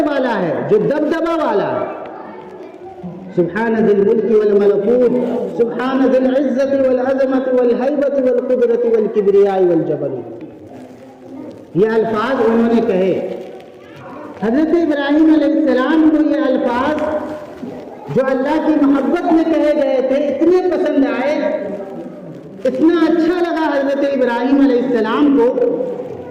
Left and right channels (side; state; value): both; identical; correlation 1.00